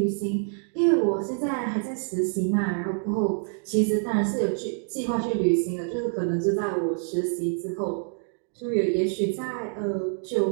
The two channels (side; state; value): left; silent; 61 dB below the other